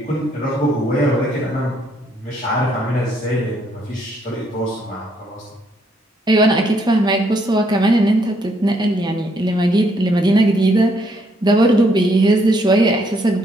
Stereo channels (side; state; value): both; normal; correlation 0.71